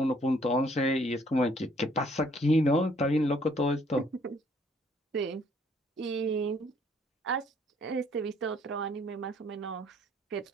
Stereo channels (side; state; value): both; normal; correlation 0.63